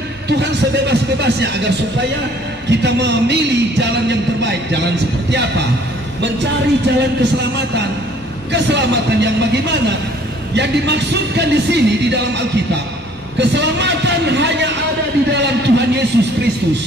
Tuhan sebebas-bebasnya agar supaya kita memilih jalan yang terbaik. Jalan seperti apa? Mencari jalan keselamatan. Keselamatan yang bagaimana? Yang dimaksudkan di sini di dalam Alkitab, keselamatan hanya ada di dalam Tuhan Yesus Kristus.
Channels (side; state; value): both; normal; correlation 0.57